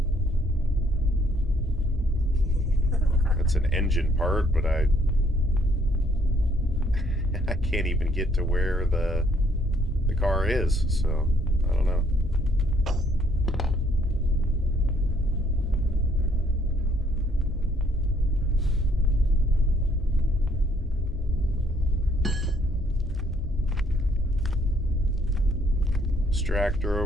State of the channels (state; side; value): normal; both; correlation 0.66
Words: That's an engine part, but I can't even get to where the car is, so I don't know. Extractor